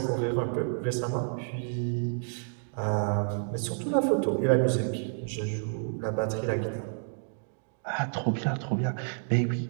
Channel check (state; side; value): silent; left; 58 dB below the other